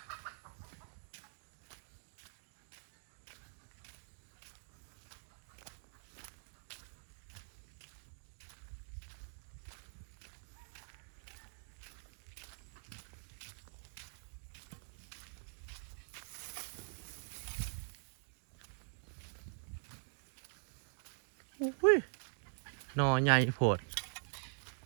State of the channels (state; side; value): silent; left; digital silence